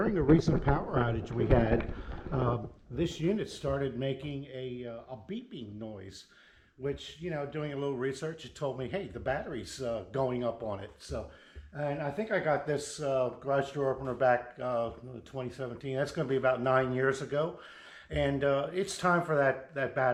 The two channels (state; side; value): identical; both; correlation 1.00